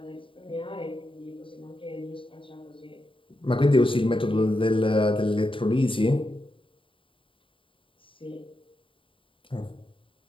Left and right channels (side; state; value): right; late; 0.25 ms